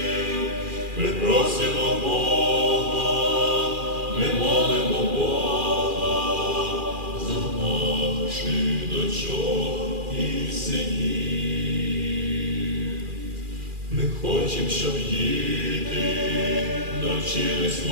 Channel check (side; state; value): left; late; 2.4 ms